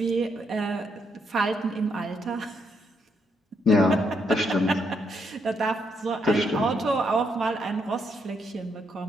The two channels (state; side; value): normal; both; correlation 0.76